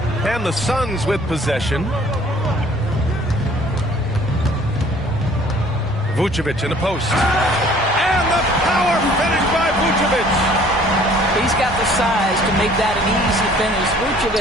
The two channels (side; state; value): both; normal; correlation 0.55